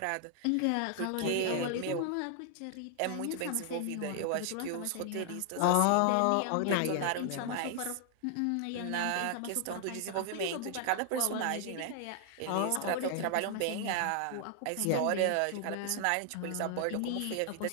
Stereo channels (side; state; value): both; different; correlation 0.00